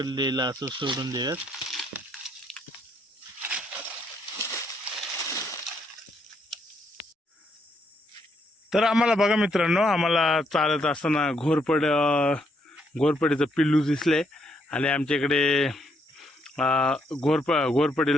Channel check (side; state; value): both; normal; correlation 0.74